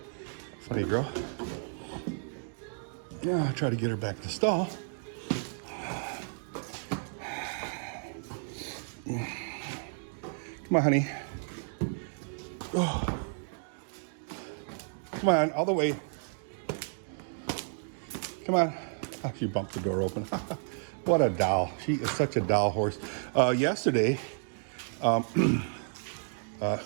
Funny girl. Yeah, I'll try to get her back to the stall. Come on, honey. Oh. Come on, all the way. Come on. Oh, she bumped the door open. What a doll. She is such a doll horse. Yesterday,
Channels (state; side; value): silent; left; 56 dB below the other